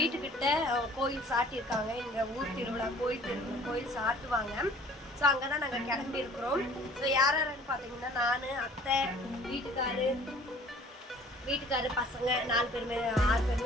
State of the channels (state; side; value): normal; both; correlation 0.51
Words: கோயில் சாட்டியிருக்காங்க. இங்கே ஊர் திருவிழா கோயில் சாட்டுவாங்க. ஸோ அங்கே தான் நாங்கள் கிளம்பி இருக்கிறோம். ஸோ யார் யாருன்னு பார்த்தீங்கன்னா நான், அத்தை, வீட்டுக்காரு பசங்க 4 பேருமே 6